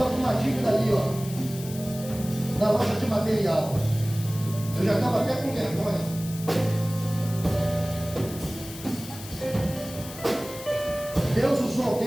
com uma dívida ali, ó, na loja de material. Eu já estava até com vergonha. Deus usou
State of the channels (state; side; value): noise; left; hiss, 14 dB below the sound